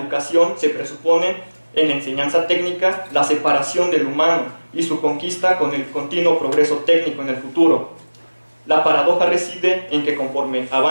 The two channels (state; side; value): inverted; both; correlation -1.00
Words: se presupone en la enseñanza técnica la separación del humano y su conquista con el continuo progreso técnico en el futuro. La paradoja reside en que conforme